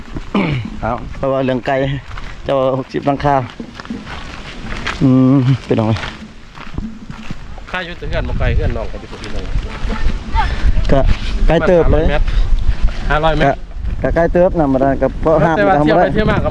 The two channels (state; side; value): identical; both; correlation 1.00